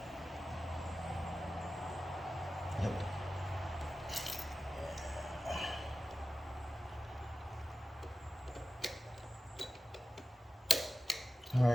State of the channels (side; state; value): both; normal; correlation 0.94